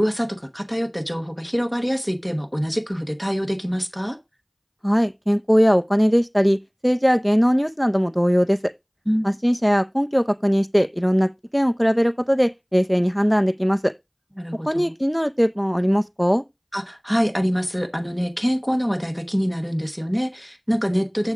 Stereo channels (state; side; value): identical; both; correlation 1.00